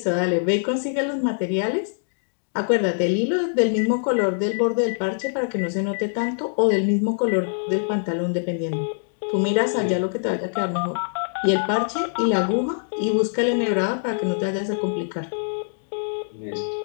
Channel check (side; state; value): right; silent; digital silence